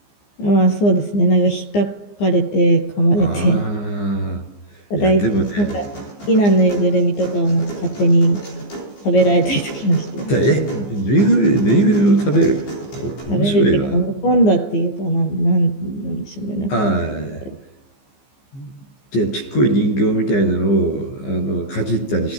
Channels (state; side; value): late; right; 15 ms